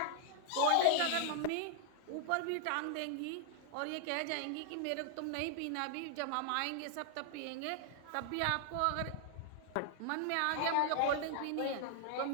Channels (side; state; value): both; different; correlation 0.00